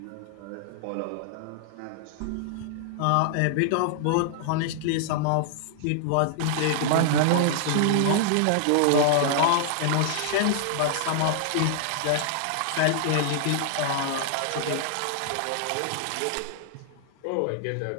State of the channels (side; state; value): both; different; correlation -0.01